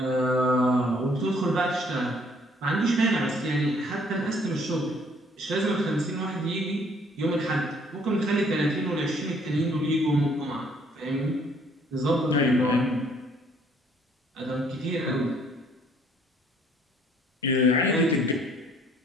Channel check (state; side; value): normal; both; correlation 0.62